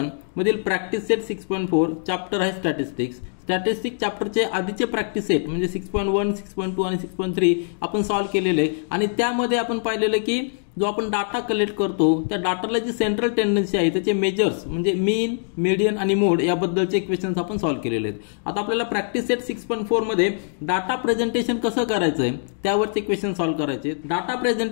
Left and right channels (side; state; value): right; silent; digital silence